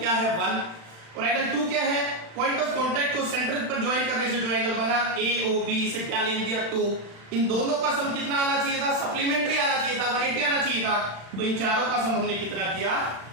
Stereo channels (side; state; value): left; late; 36 ms